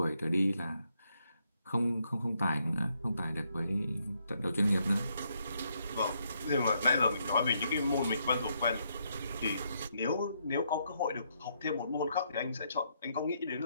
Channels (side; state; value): both; inverted; correlation -0.76